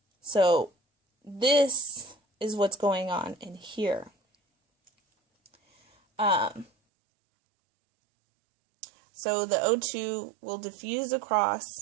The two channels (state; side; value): drops out; left; at 6.7 s